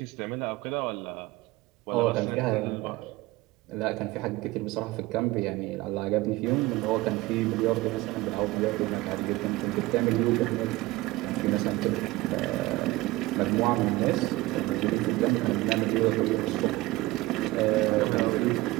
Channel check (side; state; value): left; quieter; 19.3 dB